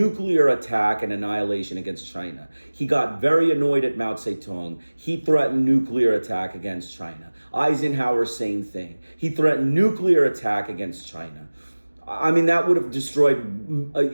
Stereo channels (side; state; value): both; inverted; correlation -1.00